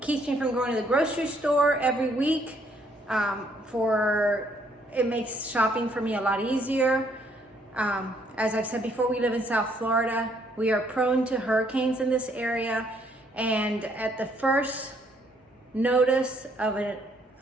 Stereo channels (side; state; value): both; normal; correlation 0.68